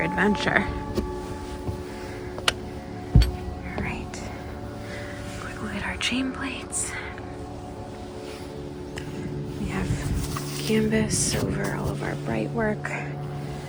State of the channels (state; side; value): identical; both; correlation 1.00